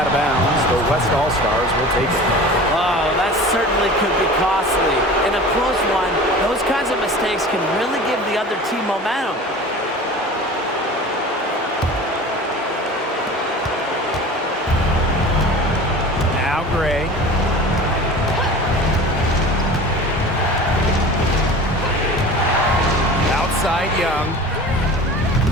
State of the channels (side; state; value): both; normal; correlation 0.38